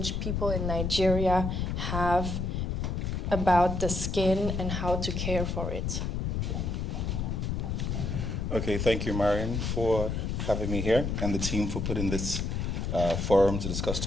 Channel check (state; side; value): noise; left; rumble, 1 dB below the sound